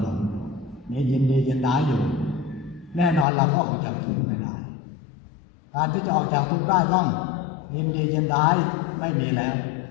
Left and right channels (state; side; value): drops out; right; at 3.2 s